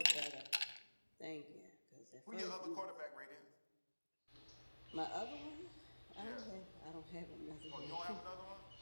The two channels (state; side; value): inverted; both; correlation -1.00